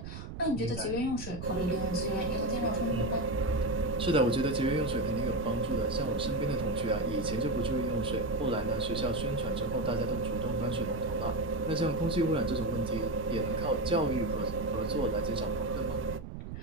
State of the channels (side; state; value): right; noise; rumble, 9 dB below the sound